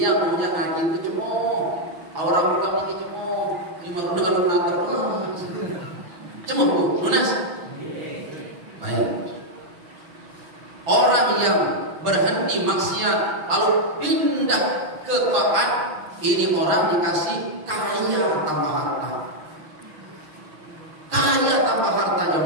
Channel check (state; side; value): late; left; 6.6 ms